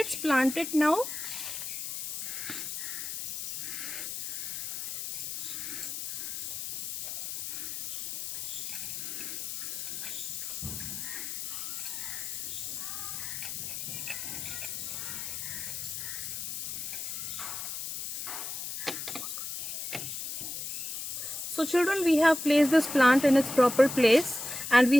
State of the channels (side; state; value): left; noise; hiss, 5 dB below the sound